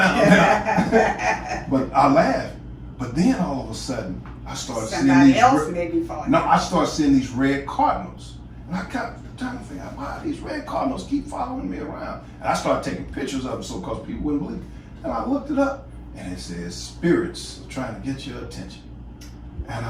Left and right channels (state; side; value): identical; both; correlation 1.00